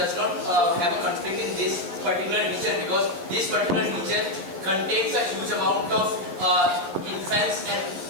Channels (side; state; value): left; late; 11 ms